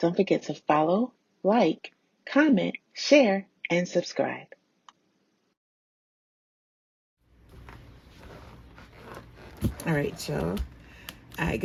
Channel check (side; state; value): both; identical; correlation 1.00